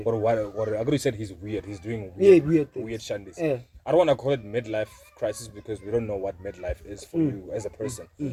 Or what Agro said he's weird. He's doing weird shandis. Yeah. I don't want to call it midlife crisis because we don't know what midlife is for you as a person.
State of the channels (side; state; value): both; identical; correlation 1.00